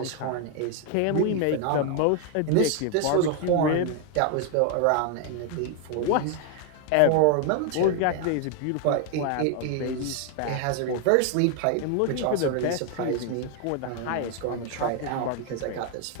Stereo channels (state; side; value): different; both; correlation 0.00